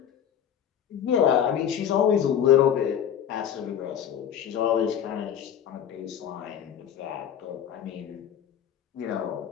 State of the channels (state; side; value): quieter; right; 9.2 dB